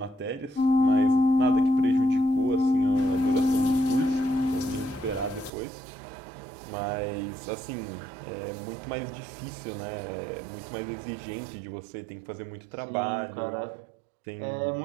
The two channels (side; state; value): left; drops out; at 5.5 s